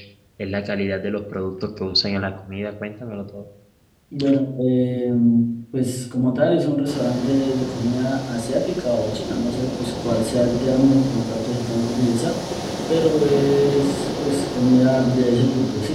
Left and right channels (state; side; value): identical; both; correlation 1.00